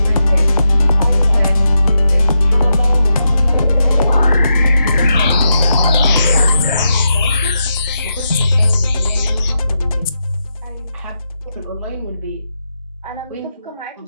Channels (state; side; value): inverted; both; correlation -0.85